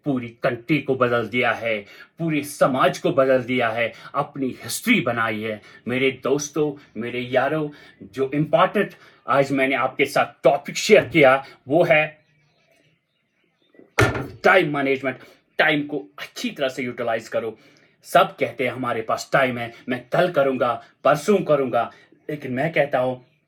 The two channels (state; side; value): identical; both; correlation 1.00